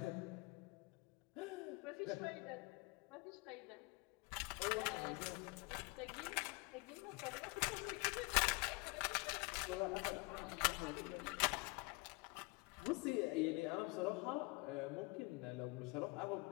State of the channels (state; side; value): quieter; right; 27.1 dB